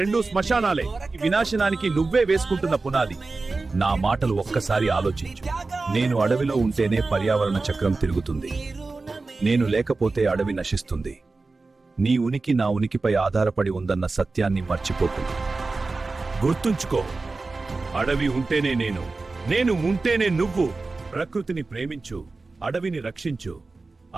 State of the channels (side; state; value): left; quieter; 3.7 dB